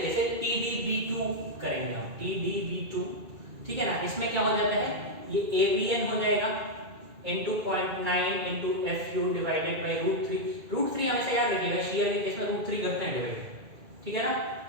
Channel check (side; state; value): left; late; 2.3 ms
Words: से TDB2 करेंगे हम, TDB2, ठीक है ना। इसमें क्या हो जाता है, ये AVN हो जाएगा into 0.9 into FU divided by √3। √3 हमेशा याद रखिएगा, शेयर के केस में √3 करते हैं डिवाइड, ठीक है ना।